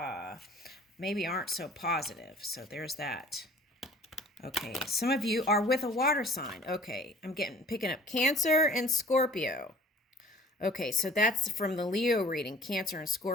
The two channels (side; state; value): both; normal; correlation 0.50